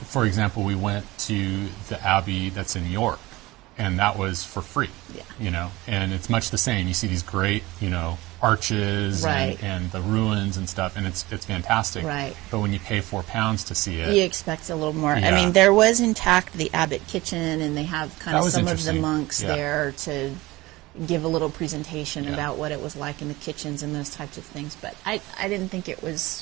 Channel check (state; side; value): quieter; left; 19.9 dB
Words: example, we went to the abbey that's in York, and that was for free. And it's much the same. You see these great arches and the ruins and stuff, and it's fantastic. Right. But when you pay £4 to see it, you expect a little more. Yeah. There was intact the abbot kitchen, and they have kind of some of the monks there to give a little presentation about what it was like in the kitchens and those types of things. But I didn't think it was